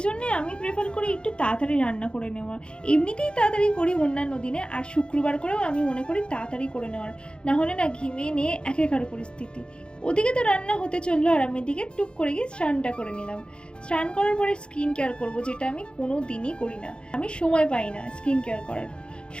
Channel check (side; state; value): right; late; 0.053 ms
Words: জন্যে আমি প্রেফার করি একটু তাড়াতাড়ি রান্না করে নেওয়ার। এমনিতেই তাড়াতাড়ি করি অন্যান্য দিনে, আর শুক্রবার করেও আমি মনে করি তাড়াতাড়ি করে নেওয়ার, না হলে না ঘিমিয়ে নিয়ে একেকার পরিস্থিতি। ওদিকে তো রান্না হতে চললো আর আমি এদিকে টুক করে গিয়ে স্নানটা করে নিলাম। স্নান করার পরে স্কিন কেয়ার করবো, যেটা আমি কোনো দিনই করি না। আমি সময় পাই না স্কিন কেয়ার করার।